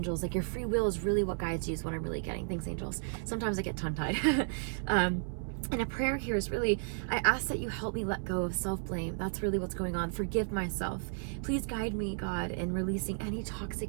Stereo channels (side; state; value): left; silent; 56 dB below the other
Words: Like, your free will is really what guides you, is what I'm really getting. Thanks, angels. Sometimes I get tongue-tied. And a prayer here is really, I ask that you help me let go of self-blame. That's really what's going on. Forgive myself. Please guide me, God, in releasing any